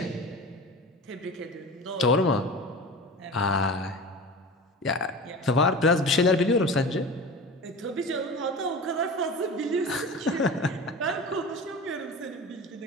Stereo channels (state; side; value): normal; both; correlation 0.33